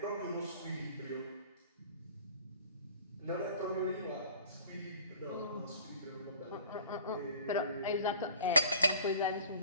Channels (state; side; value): inverted; both; correlation -0.47